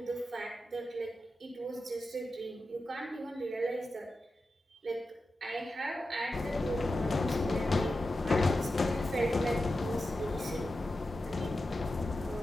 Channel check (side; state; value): both; normal; correlation 0.91